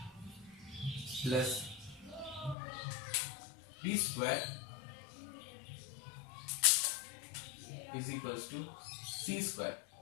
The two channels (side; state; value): right; drops out; at 2.6 s